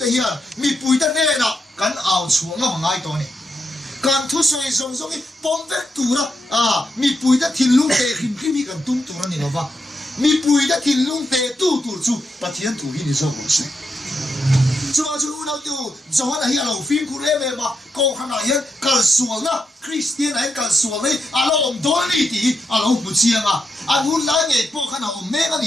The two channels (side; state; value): both; normal; correlation 0.83